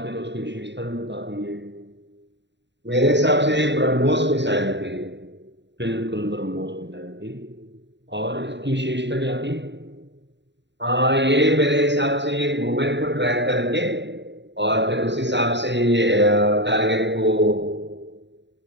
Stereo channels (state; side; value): late; left; 0.52 ms